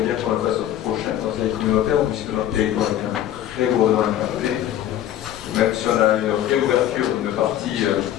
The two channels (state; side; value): quieter; right; 11.7 dB